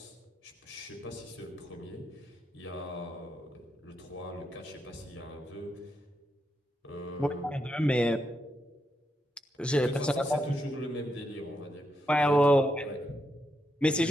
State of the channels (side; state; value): both; normal; correlation 0.82